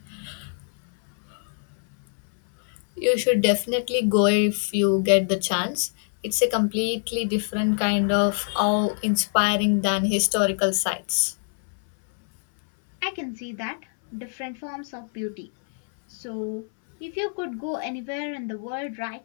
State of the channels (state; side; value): silent; right; 62 dB below the other